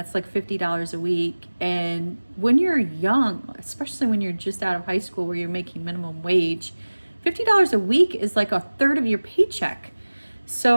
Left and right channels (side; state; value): both; inverted; correlation -1.00